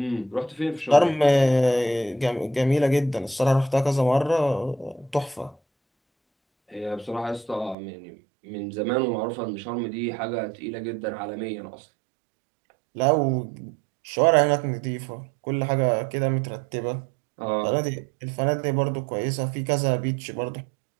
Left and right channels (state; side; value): drops out; left; at 7.8 s